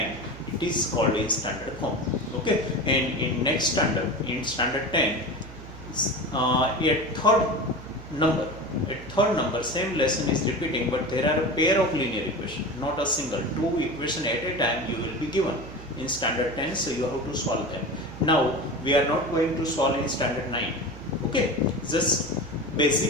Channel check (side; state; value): right; noise; hum, 15 dB below the sound